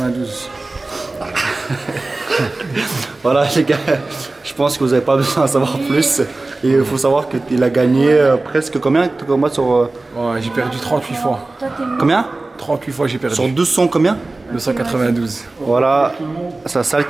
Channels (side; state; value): left; quieter; 3.1 dB